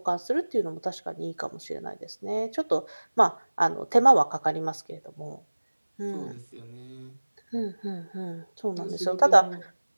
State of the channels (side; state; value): both; inverted; correlation -1.00